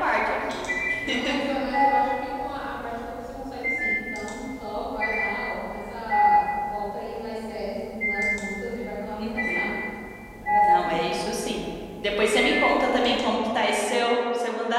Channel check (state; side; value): identical; both; correlation 1.00